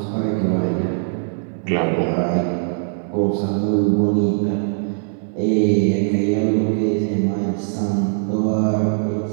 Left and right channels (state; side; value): silent; left; digital silence